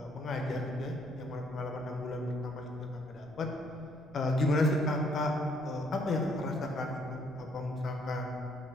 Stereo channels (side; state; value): left; noise; rumble, 23 dB below the sound